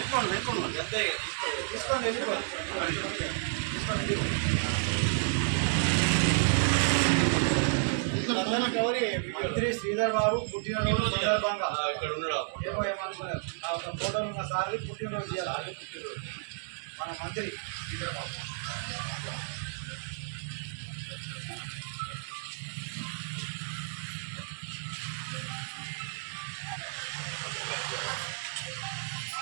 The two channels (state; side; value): silent; left; digital silence